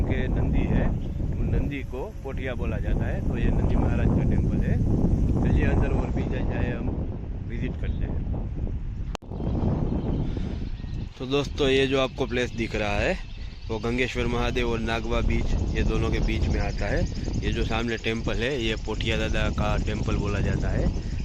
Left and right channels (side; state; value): both; identical; correlation 1.00